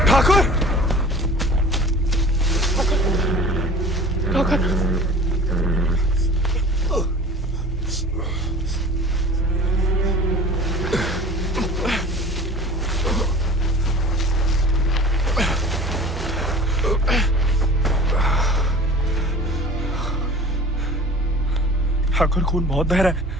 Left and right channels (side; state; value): both; normal; correlation 0.42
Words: ठाकुर, ठाकुर, ठाकुर खून बहुत बह रहा है।